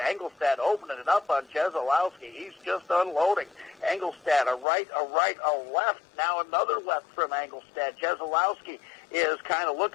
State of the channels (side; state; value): right; drops out; at 4.7 s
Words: Angelstad opening it up on Jezolowski. He's just unloading. Angelstad, a right, a left. Now another left from Angelstad. Jezolowski is kind of